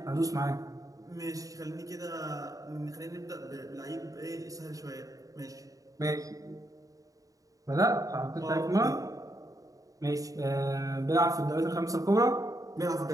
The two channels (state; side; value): late; left; 0.17 ms